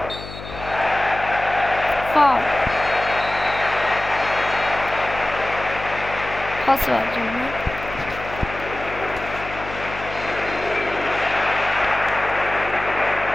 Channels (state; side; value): noise; left; hum, 12 dB below the sound